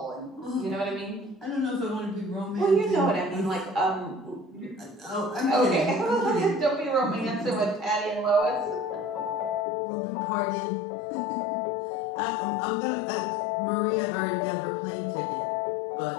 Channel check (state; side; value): drops out; right; at 9.7 s